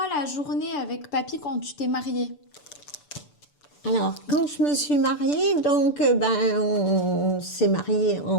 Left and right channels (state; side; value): late; right; 6.8 ms